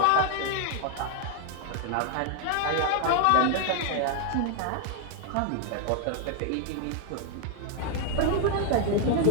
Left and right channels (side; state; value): both; different; correlation 0.00